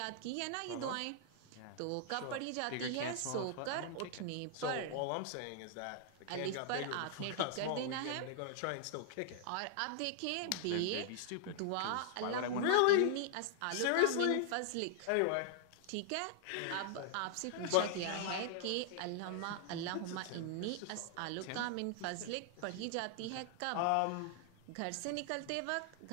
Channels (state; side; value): different; both; correlation -0.01